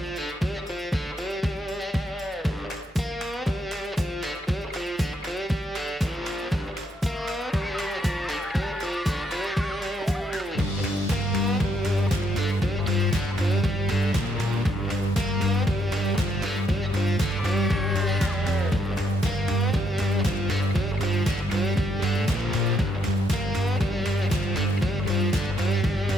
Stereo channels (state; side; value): normal; both; correlation 0.74